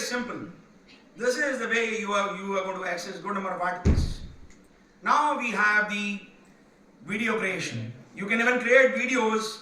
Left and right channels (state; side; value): identical; both; correlation 1.00